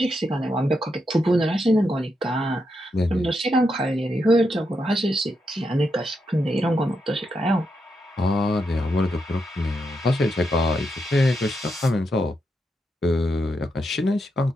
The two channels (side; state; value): both; normal; correlation 0.83